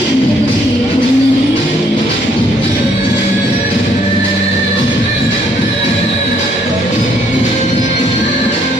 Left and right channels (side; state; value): both; normal; correlation 0.67